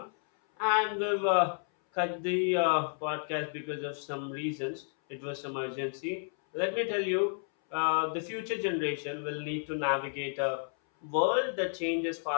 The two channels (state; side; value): silent; right; 57 dB below the other